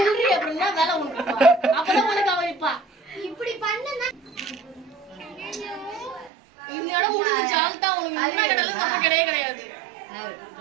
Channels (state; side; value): drops out; left; at 6.3 s